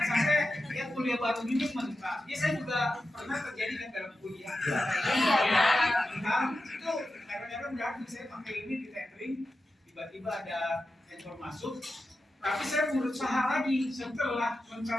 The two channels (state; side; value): normal; both; correlation 0.91